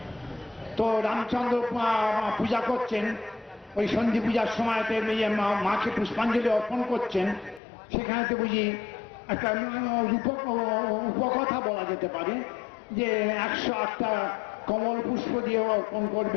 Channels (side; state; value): right; drops out; at 7.6 s